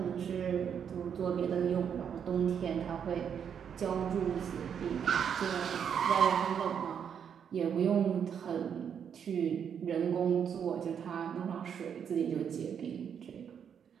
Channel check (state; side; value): quieter; left; 7.8 dB